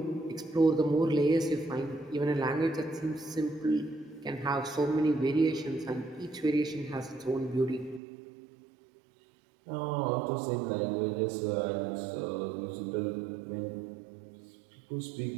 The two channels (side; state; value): left; drops out; at 8.0 s